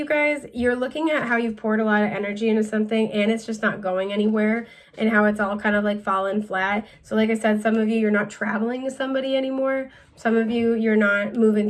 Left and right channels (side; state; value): both; identical; correlation 1.00